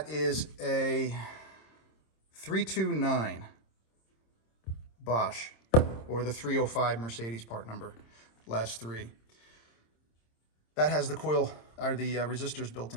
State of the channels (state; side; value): late; right; 26 ms